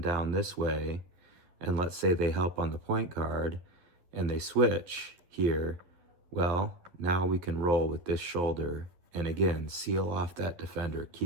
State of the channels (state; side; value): late; left; 11 ms